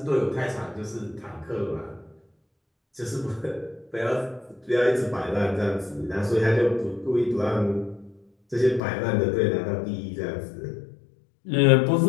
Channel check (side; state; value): right; drops out; at 8.8 s